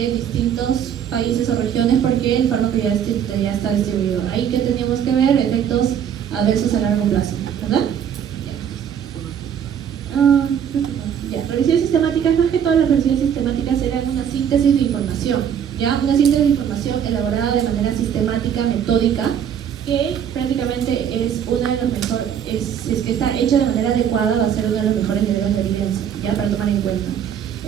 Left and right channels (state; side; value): quieter; left; 8.7 dB